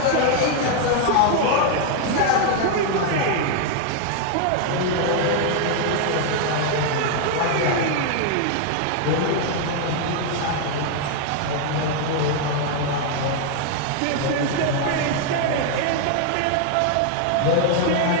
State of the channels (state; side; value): different; both; correlation 0.00